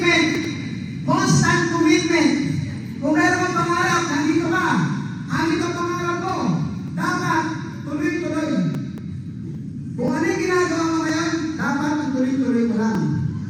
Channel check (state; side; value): identical; both; correlation 1.00